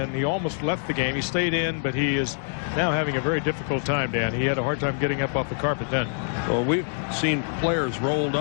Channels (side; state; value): right; silent; digital silence